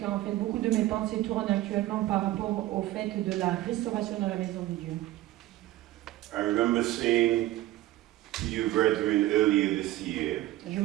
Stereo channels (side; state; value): left; quieter; 16.0 dB